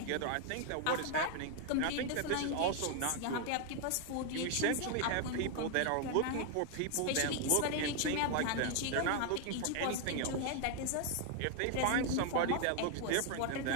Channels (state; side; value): different; both; correlation 0.00